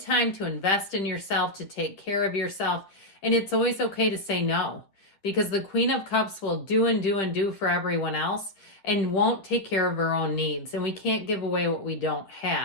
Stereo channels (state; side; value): late; right; 10 ms